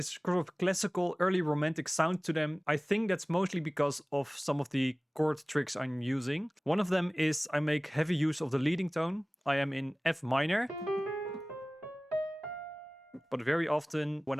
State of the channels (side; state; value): both; normal; correlation 0.98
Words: sort of classical early romantic sound to them. I think that's mostly because of some of the chord tricks I'm using. One of them is I make heavy use of the leading tone. I am in F minor. But very often when